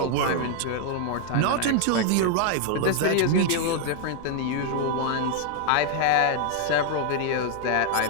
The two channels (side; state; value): both; different; correlation 0.00